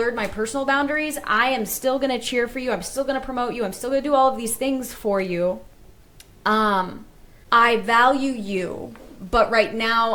my personal boundaries. I am still going to cheer for you. I'm still going to promote you. I'm still going to do all of these things for you. I value you, but right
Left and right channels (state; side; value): identical; both; correlation 1.00